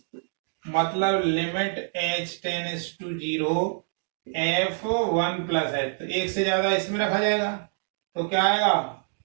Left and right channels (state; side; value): silent; left; digital silence